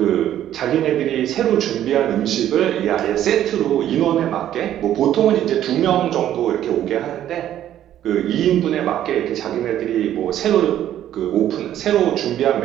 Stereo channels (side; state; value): left; quieter; 11.6 dB